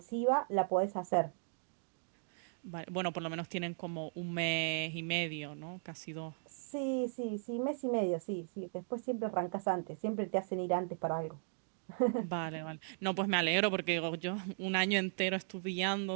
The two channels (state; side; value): silent; left; digital silence